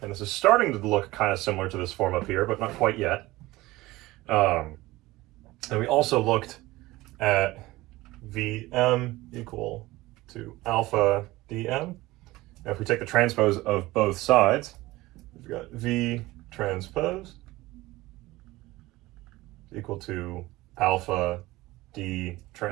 and this is starting to look kind of similar to this form up here, but not quite yet. And we also looked at vm equal to alpha dm. Now if we take the transpose of both sides, we've got v transpose equal to alpha d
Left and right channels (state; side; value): quieter; left; 19.0 dB